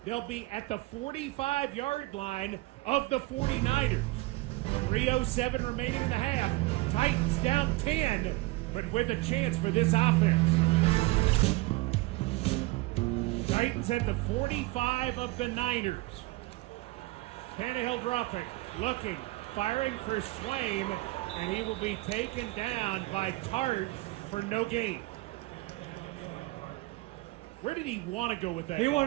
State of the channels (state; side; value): quieter; left; 21.0 dB